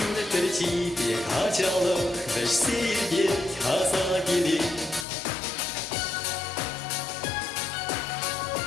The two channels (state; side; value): drops out; right; at 5.1 s